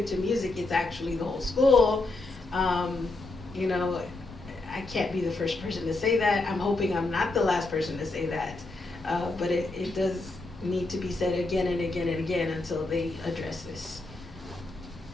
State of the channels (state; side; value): quieter; right; 3.1 dB